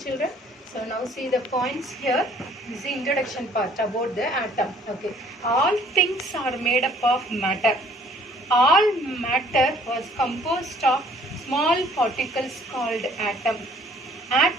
So now see the points here. This is the introduction part about the atom. Okay. All things are made up of matter. All matter was composed of small particles called atom.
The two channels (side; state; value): both; normal; correlation 0.58